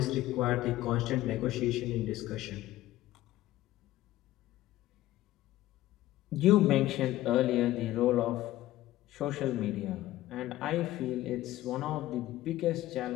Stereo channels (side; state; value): right; quieter; 15.5 dB